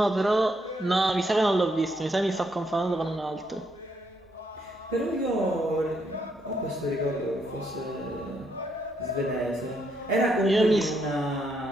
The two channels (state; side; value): normal; both; correlation 0.76